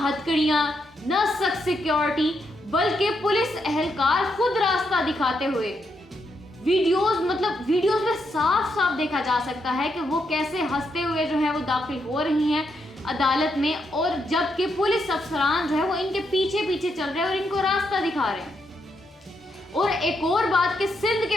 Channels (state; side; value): normal; both; correlation 0.80